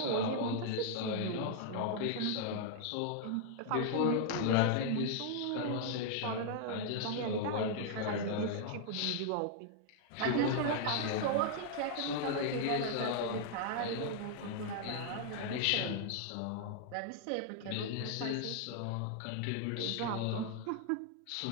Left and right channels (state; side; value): different; both; correlation 0.00